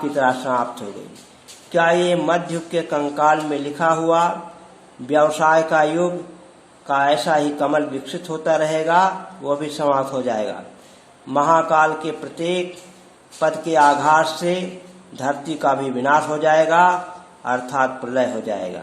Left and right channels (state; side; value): identical; both; correlation 1.00